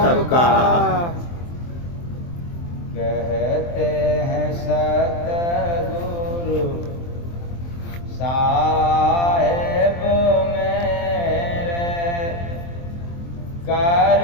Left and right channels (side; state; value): right; late; 23 ms